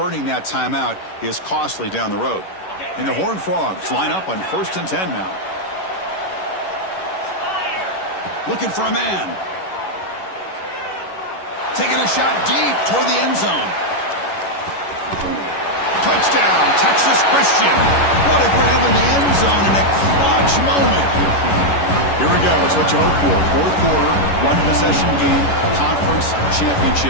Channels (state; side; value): late; right; 11 ms